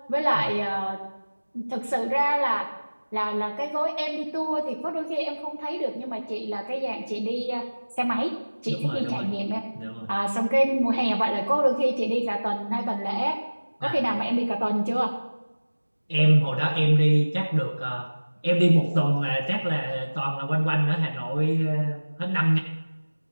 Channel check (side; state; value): both; inverted; correlation -1.00